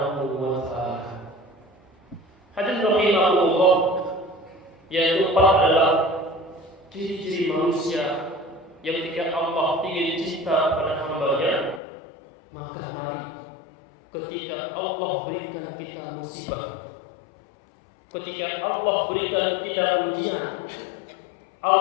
wa taala. Hadirin rahimahumullah, yang keempat adalah ciri-ciri manusia yang ketika Allah ingin cinta kepada hamba-Nya, maka mari ketika Allah berikan kita musibah, ketika Allah berikan kita ujian,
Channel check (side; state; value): right; drops out; at 11.8 s